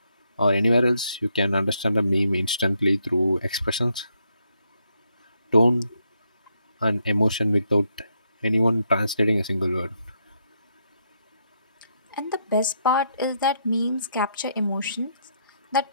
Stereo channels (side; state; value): both; inverted; correlation -0.77